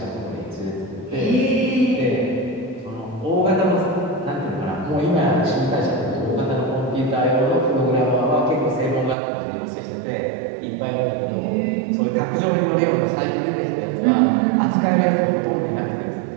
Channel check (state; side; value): drops out; left; at 9.2 s